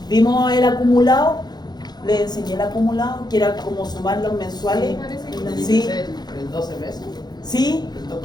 Vimos el acumulado, le enseñé el acumulado, que era como sumar los mensuales. Sí. ¿El 12 meses? Sí, ¿El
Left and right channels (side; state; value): right; late; 0.20 ms